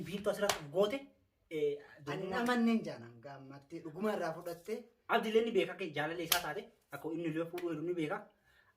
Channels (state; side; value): identical; both; correlation 1.00